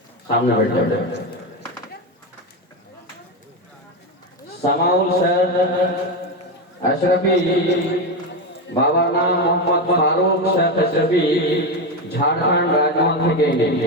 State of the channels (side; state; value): both; normal; correlation 0.13